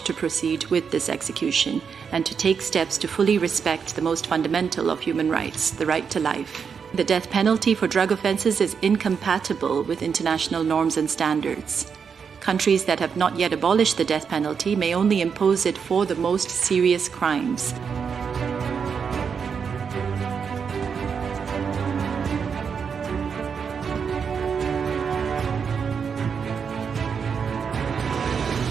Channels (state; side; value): quieter; left; 6.4 dB